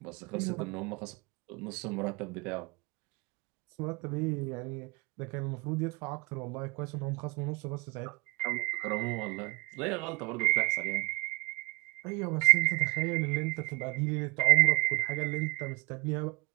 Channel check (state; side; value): quieter; left; 24.8 dB